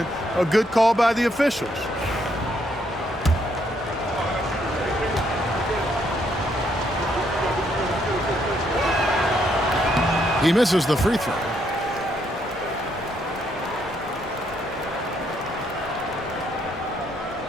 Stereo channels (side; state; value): both; normal; correlation 0.73